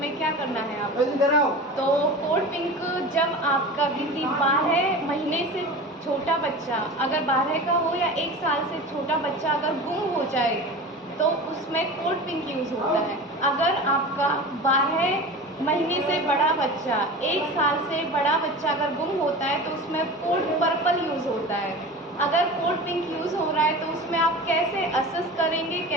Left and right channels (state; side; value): normal; both; correlation 0.33